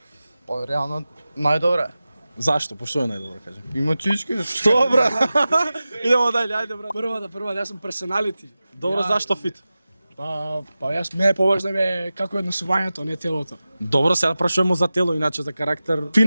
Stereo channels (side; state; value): both; inverted; correlation -0.95